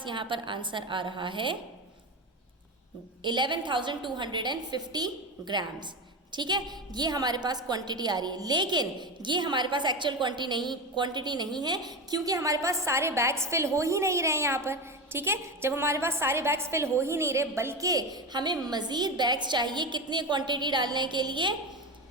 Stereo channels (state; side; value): normal; both; correlation 0.20